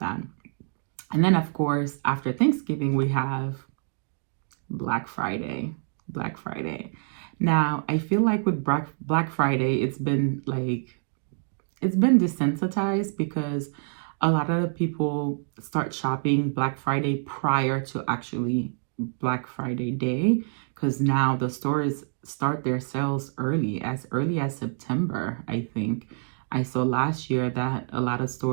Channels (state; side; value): silent; left; digital silence